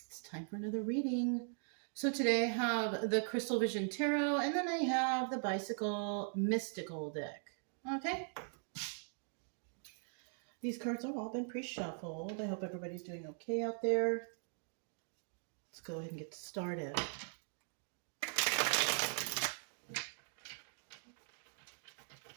It's time for another reading. So today I have the Crystal Vision Tarot, and then I have the Bicycle Mystical deck. Okay? These cards have all been pre-shuffled. I hope everybody's doing okay out there. Let's go ahead and get started.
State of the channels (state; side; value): silent; left; 51 dB below the other